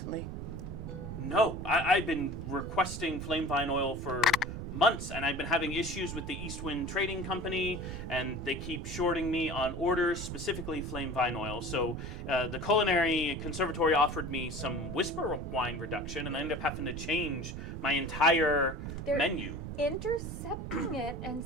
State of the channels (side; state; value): right; noise; rumble, 7 dB below the sound